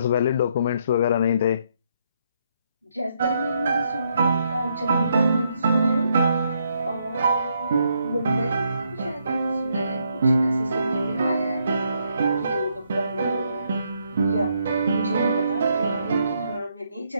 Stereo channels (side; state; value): both; inverted; correlation -0.75